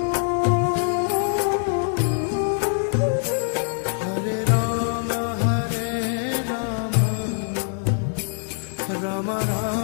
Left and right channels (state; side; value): silent; right; 63 dB below the other